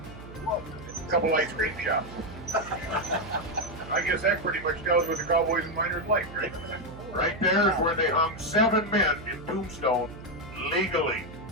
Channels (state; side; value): noise; right; hum, 15 dB below the sound